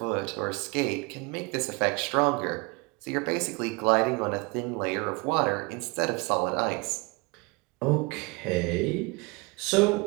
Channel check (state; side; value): quieter; left; 27.7 dB